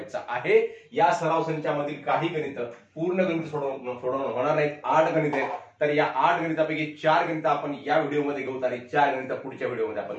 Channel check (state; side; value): identical; both; correlation 1.00